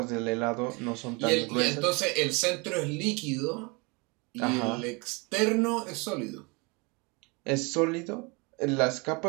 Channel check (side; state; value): left; quieter; 28.8 dB